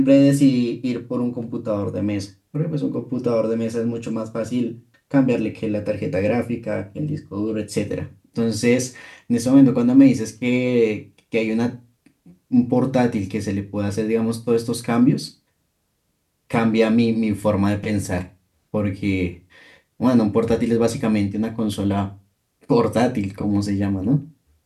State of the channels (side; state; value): both; identical; correlation 1.00